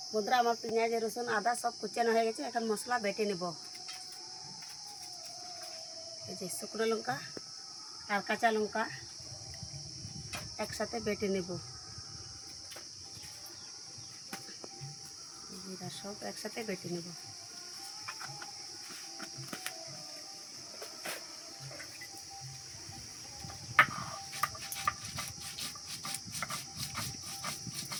বন্ধুরা আমার পেঁয়াজ রসুন আদা সব কুচানো হয়ে গেছে, এখন মশলা বেটে নেব। এই যে শুকনো লঙ্কা আর কাঁচা লঙ্কা একসাথে বেটে নেব। জিরা সব একসাথে বেটে নেব।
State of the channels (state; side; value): identical; both; correlation 1.00